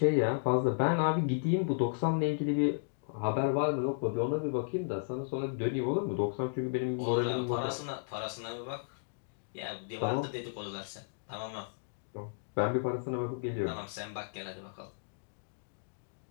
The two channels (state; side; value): silent; right; digital silence